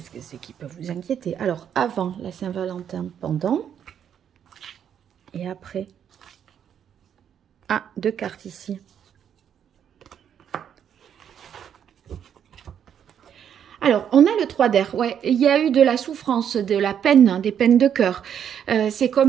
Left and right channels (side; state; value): left; quieter; 8.8 dB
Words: que c'est qui peut vous inquiéter. Alors, avant la Saint-Valentin, pendant. Et après. Ah, 2 cartes ici. Alors, on a le 3 d'air. Ouais, il y a eu de la souffrance, de la peine, hein, des peines de cœur. C'est